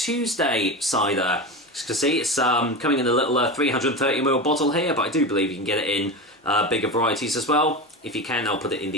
cider. As you can see, it's coming in a little 330ml bottle here, but I do believe you can get it in bigger varieties as well. If you can, I'll put it in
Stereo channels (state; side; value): normal; both; correlation 0.23